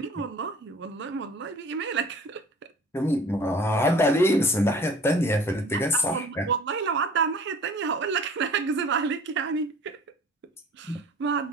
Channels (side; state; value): both; normal; correlation 0.47